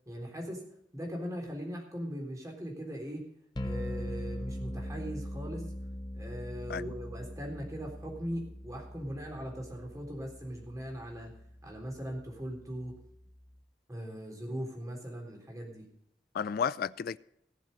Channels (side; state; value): both; normal; correlation 0.69